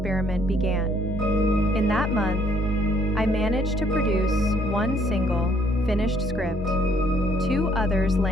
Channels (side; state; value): both; normal; correlation 0.65